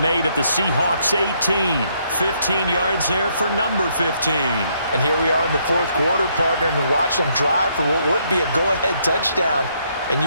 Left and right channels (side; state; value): both; inverted; correlation -0.72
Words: at the Seahawks 18. 15 yards there for number 15. And here we are in the fourth quarter, partner, and watch them drive for what would be a go-ahead touchdown. And